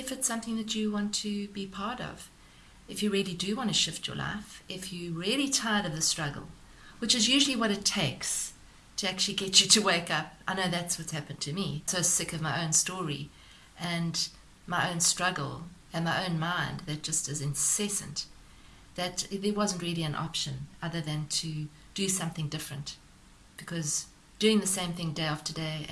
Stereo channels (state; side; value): identical; both; correlation 1.00